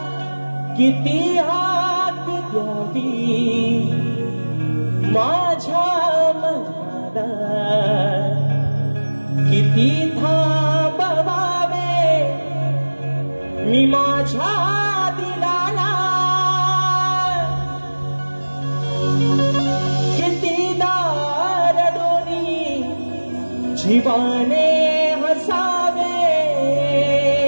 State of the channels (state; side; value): inverted; both; correlation -1.00